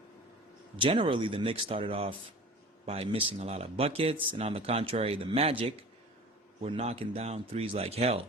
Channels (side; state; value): both; normal; correlation 0.39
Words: Generally, the Knicks started off by missing a lot of buckets, and on the contrary, the Magic were knocking down threes like hell.